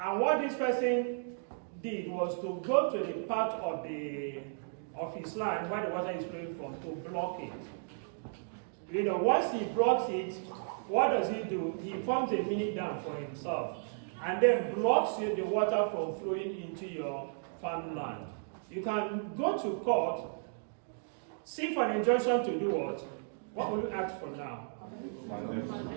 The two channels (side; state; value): left; silent; digital silence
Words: what this person did was to go to the part of his land where the water is flowing from to block it. Once he blocks it, what does he do? He forms a mini dam for himself and then blocks the water from flowing into your farmland. You can go to court, seek for an injunction to do what? What will you ask for now?